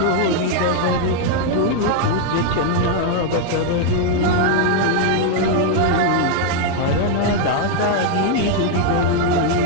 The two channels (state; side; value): different; both; correlation 0.00